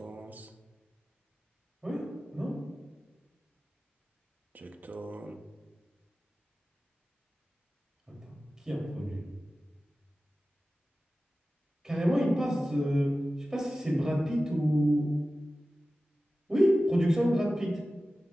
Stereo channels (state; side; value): normal; both; correlation 0.95